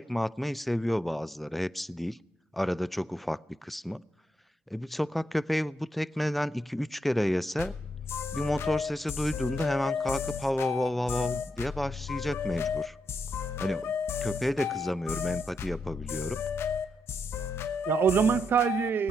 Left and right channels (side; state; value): both; normal; correlation 0.81